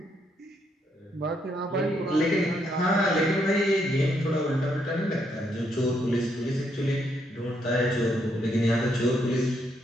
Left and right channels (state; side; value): normal; both; correlation 0.75